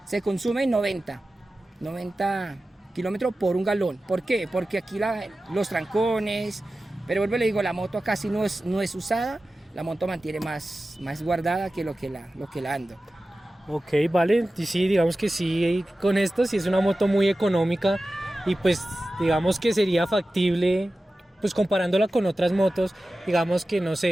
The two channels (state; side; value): normal; both; correlation 0.95